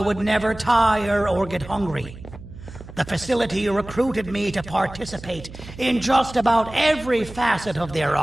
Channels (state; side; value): noise; right; hum, 15 dB below the sound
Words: would never tire or get hungry. The facility recruited me to participate in just about every facet of their